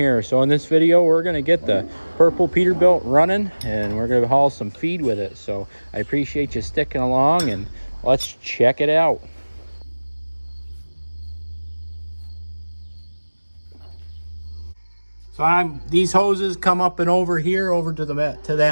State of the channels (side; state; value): both; inverted; correlation -1.00